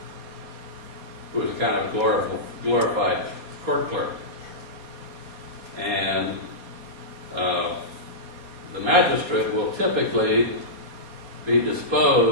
who is a kind of glorified court clerk. And the magistrate will typically be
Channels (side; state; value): left; late; 4.2 ms